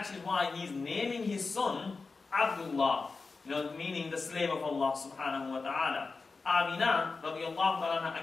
is why he's naming his son Abdullah, meaning the slave of Allah subhanahu wa ta'ala. Amina, radiallahu ta'ala,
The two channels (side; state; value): right; quieter; 4.2 dB